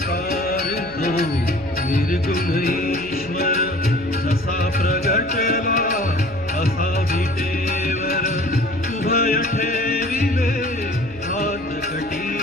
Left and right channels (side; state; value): left; noise; hum, 22 dB below the sound